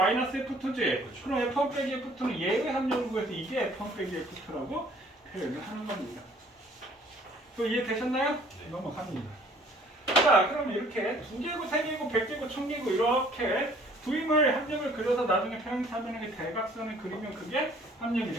F2지? 그럼 F1 빼기 F2는 얘의 합력을 구해서 이게 F1 빼기 F2라고 표현을 하는 겁니다. 또 이해되셨나요? 네. 넘어갑니다. 자, 그럼 이렇게 2개고 3개고 100개고 1000개고 이렇게 두 임의 합력을 그려서 나중에 평행사변형의 대각선을 그리면 그게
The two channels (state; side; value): normal; both; correlation 0.57